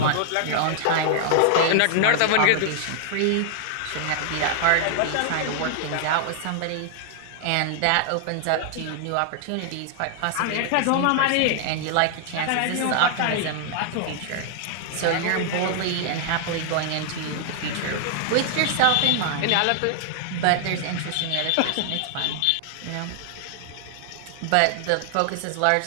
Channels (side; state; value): both; different; correlation 0.00